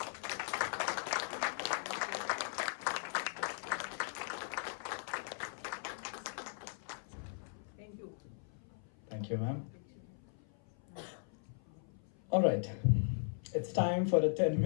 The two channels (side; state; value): right; silent; 52 dB below the other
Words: Thank you, ma'am. All right, it's time for a